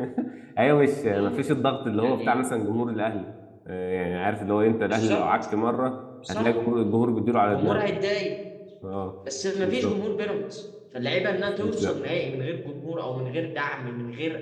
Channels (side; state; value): both; identical; correlation 1.00